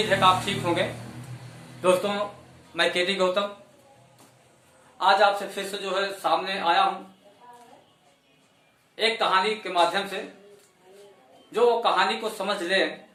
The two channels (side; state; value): both; identical; correlation 1.00